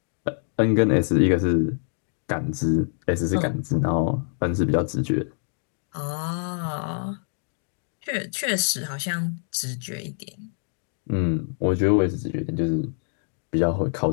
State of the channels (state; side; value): silent; right; 61 dB below the other